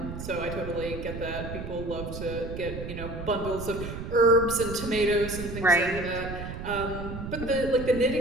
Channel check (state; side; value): noise; right; rumble, 8 dB below the sound